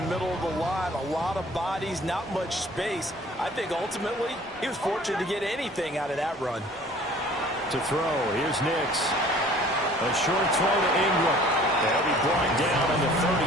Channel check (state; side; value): normal; both; correlation 0.51